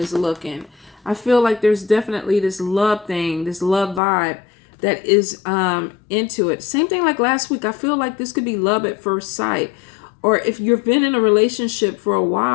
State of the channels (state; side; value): drops out; right; at 4.0 s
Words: looking, I feel like there's definitely this love thing, this love vibe that is into it. Same thing like last week. I feel like this could be love at first sight. Or if you've been in a relationship for a